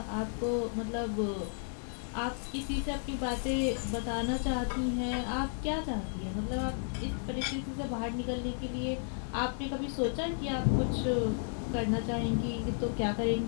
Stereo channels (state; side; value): silent; right; 56 dB below the other